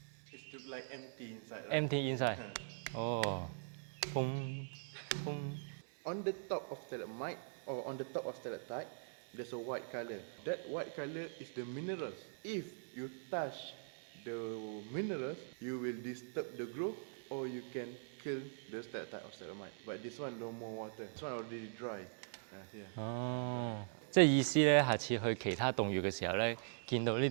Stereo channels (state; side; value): silent; left; digital silence